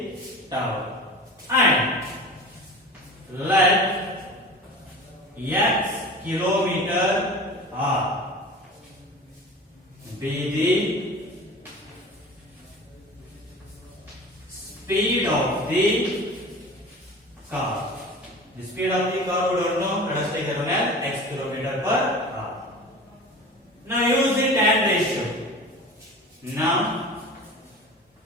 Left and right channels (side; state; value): both; normal; correlation 0.36